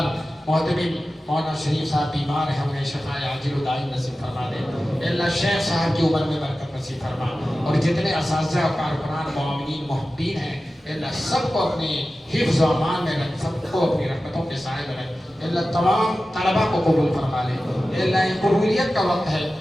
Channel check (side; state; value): both; normal; correlation 0.95